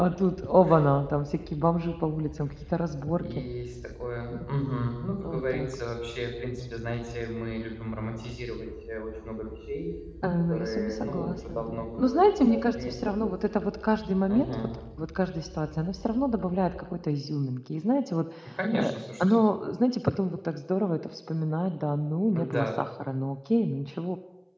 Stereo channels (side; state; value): both; identical; correlation 1.00